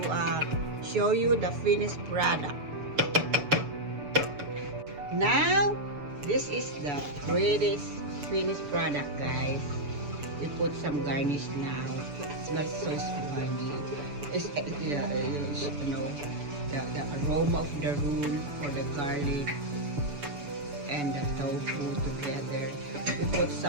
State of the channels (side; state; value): left; late; 6.9 ms